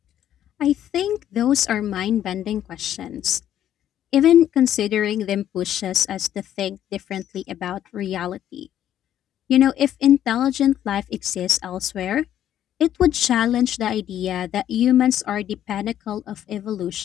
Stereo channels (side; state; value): right; quieter; 11.1 dB